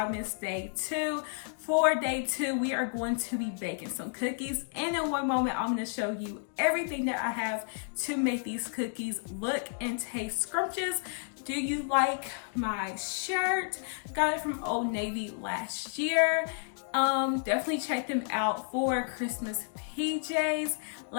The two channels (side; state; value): right; silent; digital silence